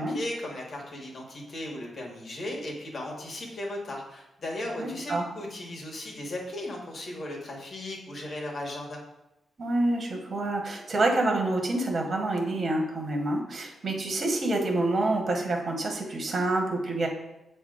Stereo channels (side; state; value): both; normal; correlation 0.85